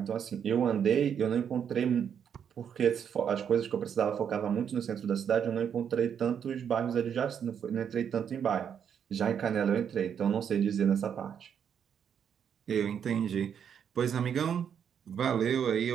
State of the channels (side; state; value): left; quieter; 8.1 dB